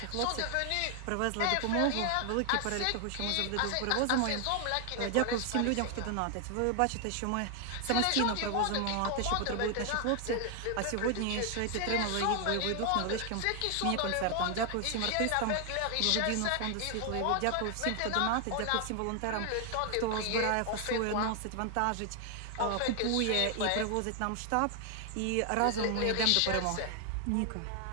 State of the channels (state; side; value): different; both; correlation 0.00